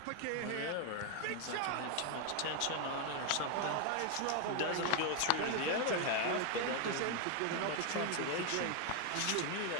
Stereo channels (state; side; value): different; both; correlation 0.01